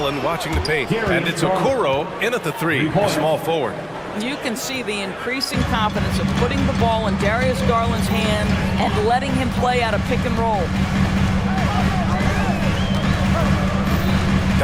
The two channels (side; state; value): both; identical; correlation 1.00